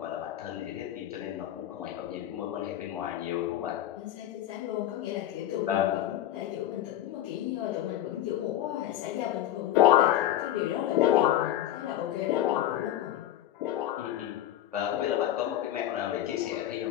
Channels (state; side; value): quieter; right; 12.5 dB